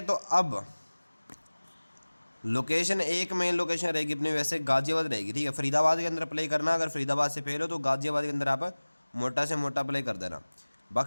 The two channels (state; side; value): inverted; both; correlation -1.00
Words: तो अब लोकेशन एक मेन लोकेशन रहेगी अपनी वैसे गाज़ियाबाद रहेगी, ठीक है। फरीदाबाद के अंदर प्ले करना, अगर फरीदाबाद से फेल हो तो गाज़ियाबाद के अंदर आप मोटा से मोटा प्ले कर देना।